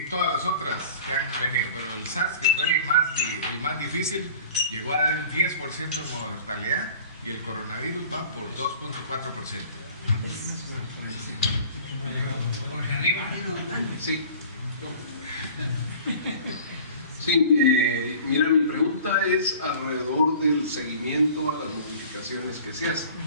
todas las otras que han venido, pero el SARS, que fue el más difícil, llegó a dar el 10% de mortalidad y el coronavirus va por 2.4%. Sí. Sí, mira, mi pregunta es alrededor del seguimiento a las modificaciones que se hacen.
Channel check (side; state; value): both; inverted; correlation -0.45